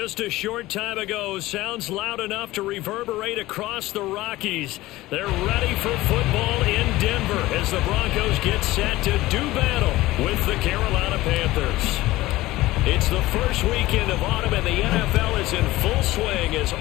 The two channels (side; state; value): right; quieter; 17.8 dB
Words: a short time ago, sounds loud enough to reverberate across the Rockies. They're ready for football in Denver as the Broncos get set to do battle with the Carolina Panthers. It's the first weekend of autumn and the NFL is in full swing as